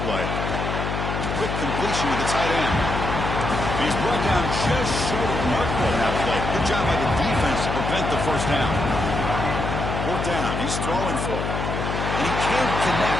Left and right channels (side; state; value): left; noise; hum, 3 dB below the sound